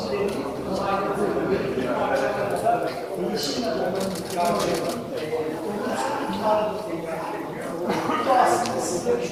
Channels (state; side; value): identical; both; correlation 1.00